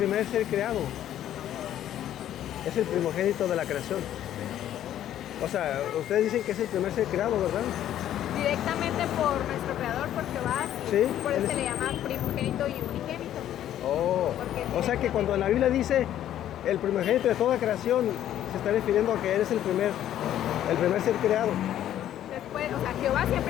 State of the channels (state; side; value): quieter; right; 11.6 dB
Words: ser creado. Es el primogénito de la creación. O sea, ustedes dicen que es el primer ser creado, ¿verdad? Directamente por nuestro creador, por Jehová, Sí, por eso se le llama primogénito y unigénito. Oh, Porque o sea que cuando en la Biblia dice el primogénito de toda creación, se está refiriendo a que eres el primer ser creado. Después, o sea, Jehová